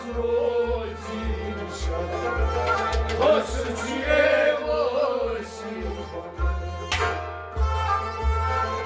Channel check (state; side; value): identical; both; correlation 1.00